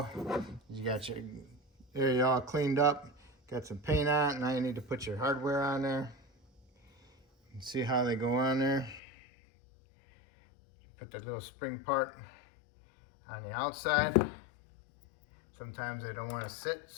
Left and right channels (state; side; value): drops out; right; at 9.0 s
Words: You got your area all cleaned up. Got some paint on it. Now you need to put your hardware on there. And see how they go on there. Put the little spring part on the outside. Sometimes they don't want to sit,